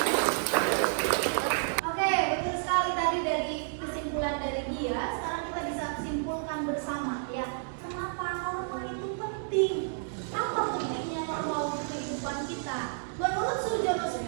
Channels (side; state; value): left; silent; digital silence